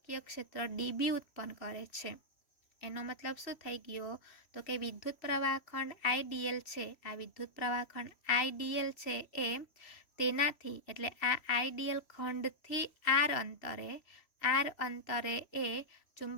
ક્ષેત્ર ડીબી ઉત્પન્ન કરે છે. એનો મતલબ શું થઈ ગયો? તો કે વિદ્યુત પ્રવાહ ખંડ આઈડીએલ છે, આ વિદ્યુત પ્રવાહ ખંડ આઈડીએલ છે એ તેનાથી એટલે આ આઈડીએલ ખંડથી આર અંતરે એ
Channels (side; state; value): right; late; 3.1 ms